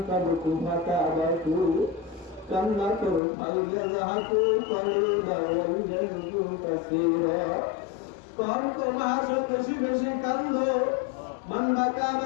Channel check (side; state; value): right; drops out; at 3.2 s